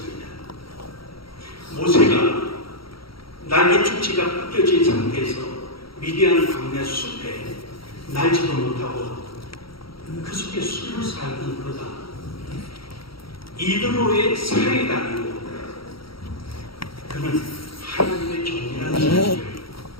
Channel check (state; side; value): late; right; 0.75 ms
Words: 모세가 날개 축지가 벗겨진 상태에서 미디안 광야 숲에 날지도 못하고 그 속에 숨을 살던 그가 이드로의 사회가 아니고 그는 하나님의 종이라는 사실을